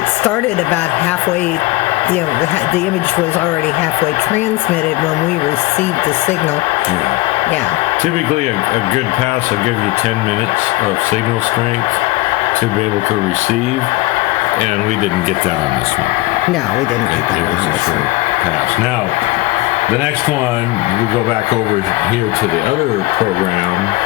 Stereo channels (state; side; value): quieter; right; 20.0 dB